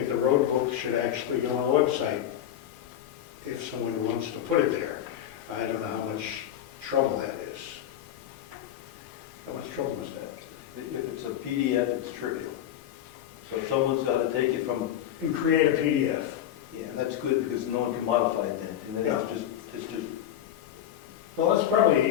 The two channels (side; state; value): right; quieter; 11.1 dB